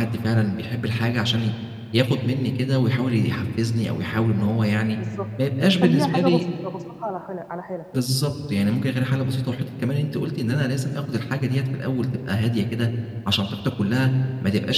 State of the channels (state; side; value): identical; both; correlation 1.00